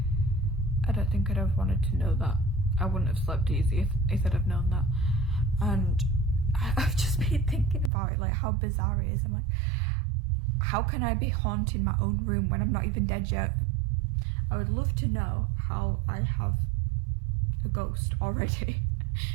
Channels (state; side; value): drops out; left; at 7.9 s